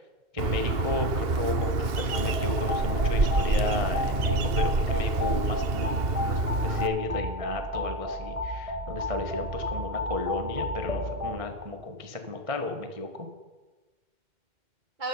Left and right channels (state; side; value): late; left; 2.1 ms